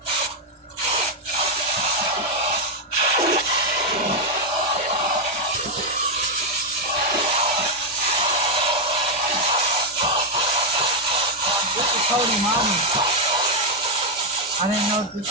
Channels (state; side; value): normal; both; correlation 0.01